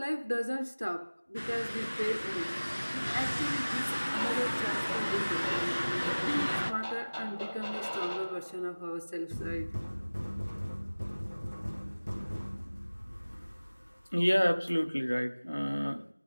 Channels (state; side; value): inverted; both; correlation -1.00